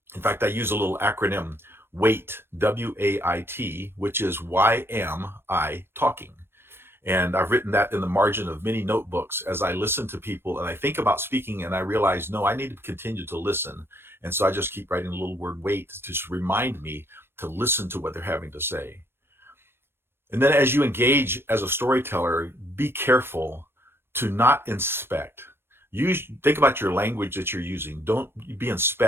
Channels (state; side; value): late; left; 0.11 ms